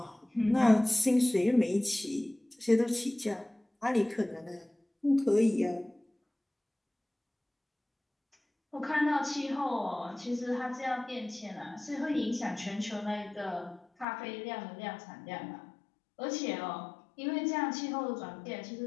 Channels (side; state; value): right; drops out; at 14.1 s